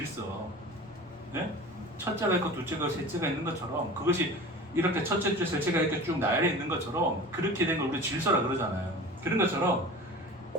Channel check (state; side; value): normal; both; correlation 0.37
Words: 네? 첫째가 있고 둘째가 셋째가 있는 것처럼 그것이 이렇게 첫째 째 셋째가 이렇게 쭉 나열해 있는 것처럼 그렇게 된 걸 우리 질서라 그러잖아요. 그런 것처럼